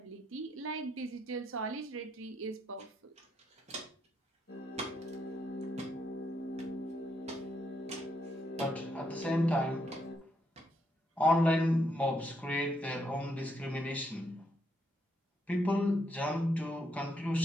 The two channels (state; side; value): normal; both; correlation 0.77